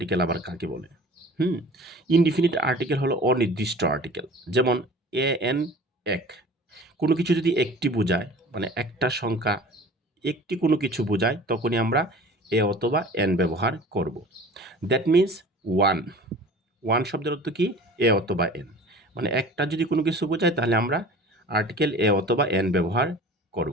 আবার কাকে বলে? ইনডিফিনিট আর্টিকেল হলো অনির্দিষ্ট আর্টিকেল। যেমন এন এক, কোনো কিছু যদি একটি বোঝায়, মানে একটা সংখ্যা একটি কোনো কিছু বোঝায়, তখনই আমরা এ অথবা এন ব্যবহার করব। দ্যাট মিন্স ওয়ান শব্দের অর্থ কি? এ অথবা এন। মানে একটা যদি কোনো কিছু বোঝায় তাহলে আমরা আর্টিকেল এ অথবা এন ব্যবহার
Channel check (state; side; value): normal; both; correlation 0.43